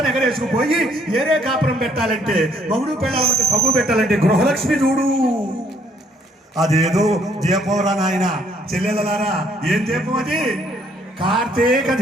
ఎగరేసుకుపోయి ఏరే కాపురం పెట్టాలంటే మగుడు పెళ్ళాలంటే పగ్గు పెట్టాలంటే గృహలక్ష్మి చూడు. అదేదో దీపంరా నాయన చెల్లెలలారా, ఏం దీపం అది? కార్తీక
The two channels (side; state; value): both; normal; correlation 0.66